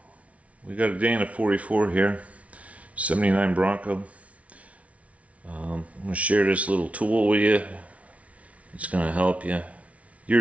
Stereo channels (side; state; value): left; late; 0.065 ms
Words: we got a day in a 44 here, 79 Bronco. I'm going to share this little tool with you. It's going to help you.